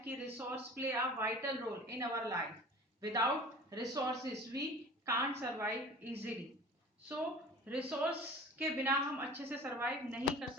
कि resource play a vital role in our life. Without resources we can't survive easily. So resource के बिना हम अच्छे से सर्वाइव नहीं कर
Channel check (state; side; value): normal; both; correlation 0.42